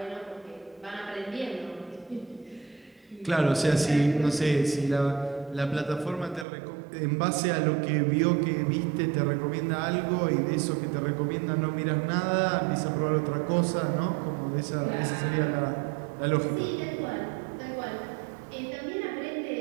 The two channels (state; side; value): drops out; left; at 6.5 s